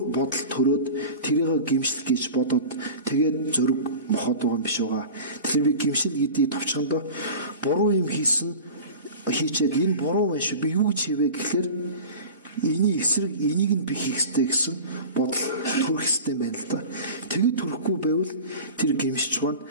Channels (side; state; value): both; inverted; correlation -0.35